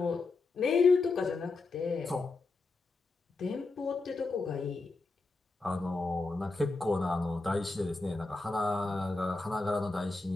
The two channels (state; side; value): quieter; right; 3.6 dB